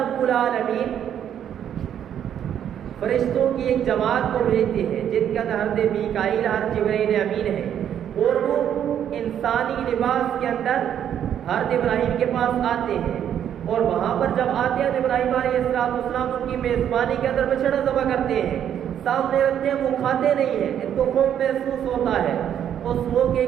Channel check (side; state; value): left; quieter; 9.6 dB